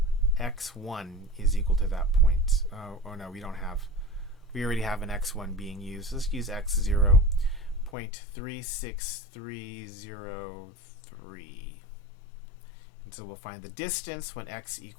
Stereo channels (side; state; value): right; drops out; at 7.9 s